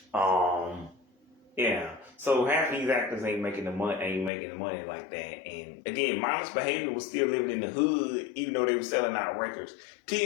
yeah. So half of these actors ain't making the money like that. And again, Mindless Behavior was still living in the hood, even though they were selling out records.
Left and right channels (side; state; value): right; drops out; at 4.3 s